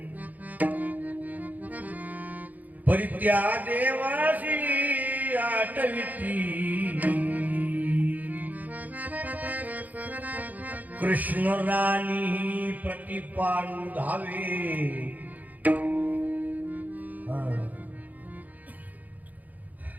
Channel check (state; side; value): late; left; 0.080 ms